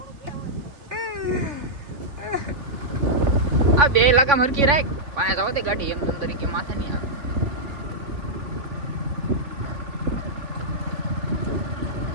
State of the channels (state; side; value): late; left; 3.6 ms